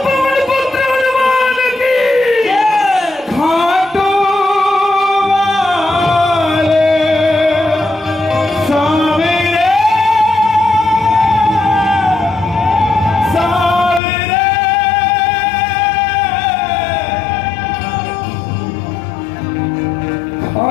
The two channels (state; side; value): drops out; right; at 14.0 s